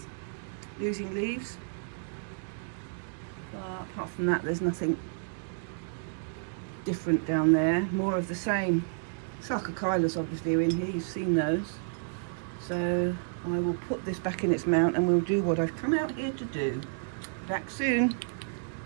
losing leaves, but apart from that there's nothing different down there. More of the same. Sarcochyllus obviously are in here, you've seen those. So I will put this back in its mount and we'll do what I've come out here to do. Back soon.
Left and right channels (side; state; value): left; silent; digital silence